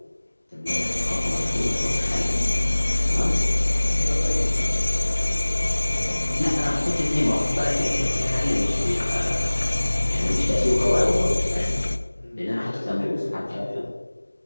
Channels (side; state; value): both; inverted; correlation -1.00